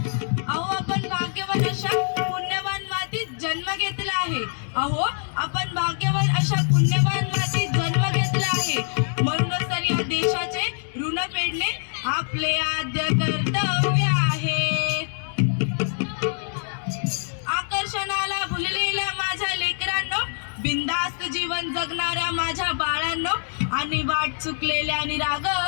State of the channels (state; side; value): silent; right; digital silence